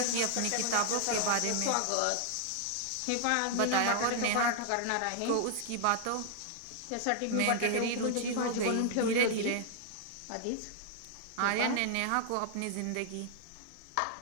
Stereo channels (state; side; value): different; both; correlation 0.00